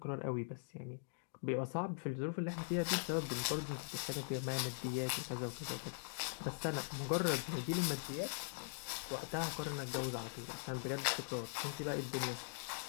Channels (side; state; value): right; silent; digital silence